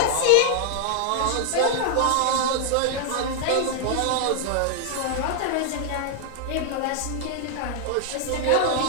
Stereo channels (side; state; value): both; different; correlation 0.00